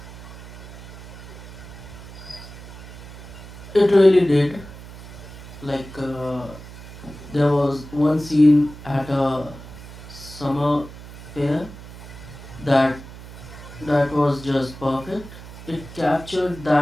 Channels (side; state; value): right; noise; hum, 15 dB below the sound